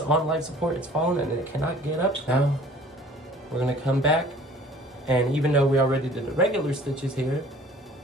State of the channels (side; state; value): both; normal; correlation 0.50